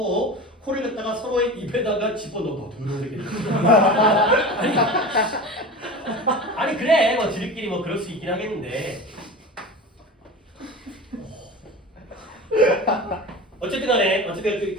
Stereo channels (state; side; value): normal; both; correlation 0.31